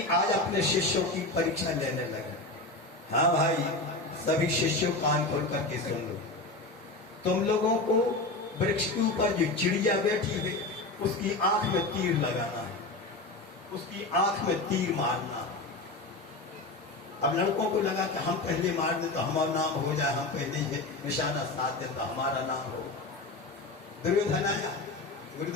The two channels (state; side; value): quieter; right; 3.0 dB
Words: आज अपने शिष्यों की परीक्षा लेने लगे। हाँ भाई सभी शिष्यों कान खोल करके सुन लो, तुम लोगों को वृक्ष के ऊपर जो चिड़िया बैठी है उसकी आंख में तीर लगाना है, उसकी आंख में तीर मारना। अब लड़कों को लगा कि हम पहले मार दें तो हमारा नाम हो जाए, हम पहले ही निशाना साध दें तो हमारा नाम हो। दुर्योधन आया,